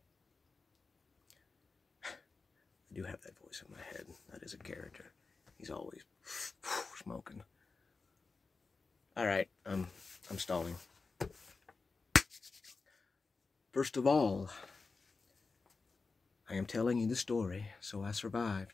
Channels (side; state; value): right; quieter; 4.2 dB